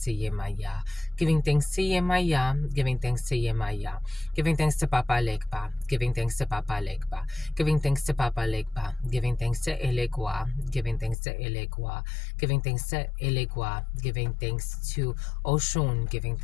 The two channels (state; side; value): drops out; right; at 11.2 s